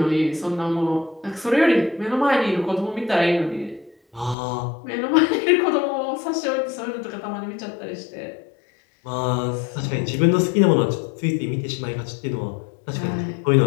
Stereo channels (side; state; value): right; drops out; at 4.4 s